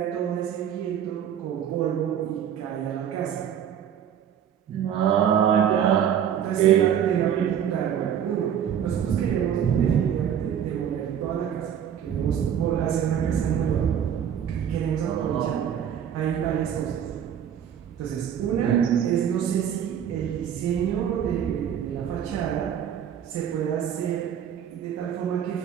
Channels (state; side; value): quieter; left; 9.1 dB